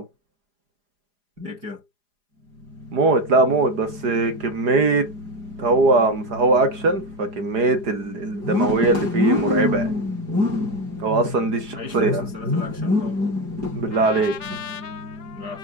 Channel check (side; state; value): left; late; 4.9 ms